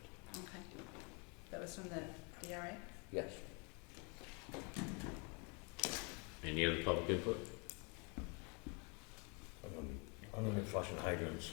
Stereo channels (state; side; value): quieter; right; 33.6 dB